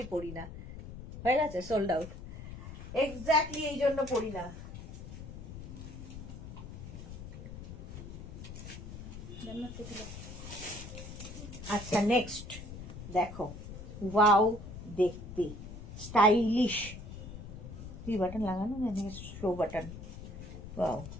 পড়ি না। হয়ে গেছে, সোল্ড আউট। এক্স্যাক্টলি এই জন্য পড়ি না। আচ্ছা নেক্সট দেখো, ওয়াও দেখতে স্টাইলিশ। কি বাটন লাগানো, শো বাটন। ওয়াও,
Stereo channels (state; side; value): noise; left; rumble, 11 dB below the sound